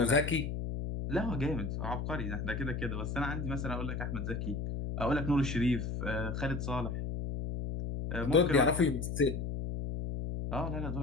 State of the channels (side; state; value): left; noise; hum, 3 dB below the sound